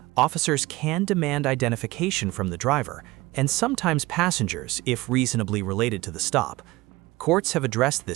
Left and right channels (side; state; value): left; quieter; 20.5 dB